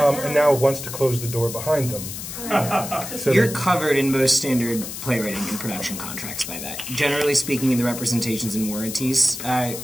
now wants to close the door behind them. So you're covered in most standard playwriting and production contracts by that. Generally speaking, in the representations and warranties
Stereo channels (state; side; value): noise; left; hiss, 8 dB below the sound